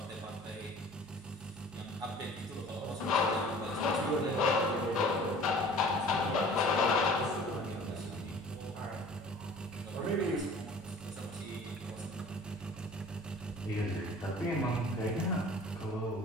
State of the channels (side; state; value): both; normal; correlation 0.47